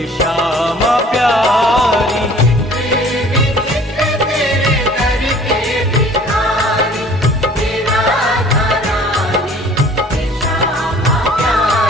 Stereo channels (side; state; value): both; normal; correlation 0.51